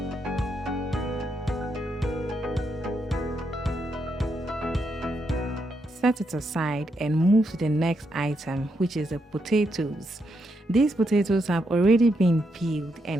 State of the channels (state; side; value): normal; both; correlation 0.80